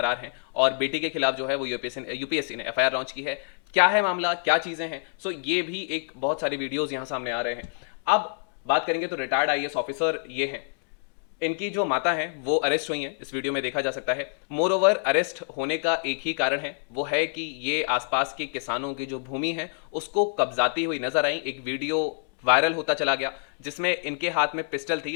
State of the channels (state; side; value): silent; right; digital silence